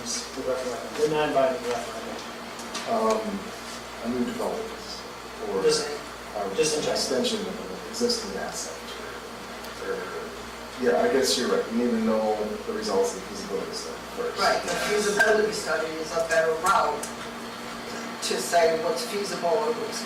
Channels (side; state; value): both; identical; correlation 1.00